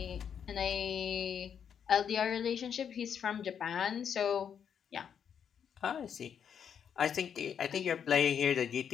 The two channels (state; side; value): quieter; right; 7.9 dB